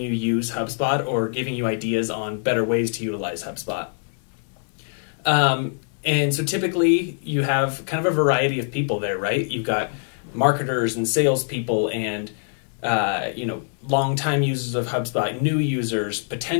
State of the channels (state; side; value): silent; right; digital silence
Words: use HubSpot or giving you ideas on better ways to utilize HubSpot. And so typically you have kind of a variety of people there, right? You've got marketers and salespeople and, longtime users of HubSpot, new users,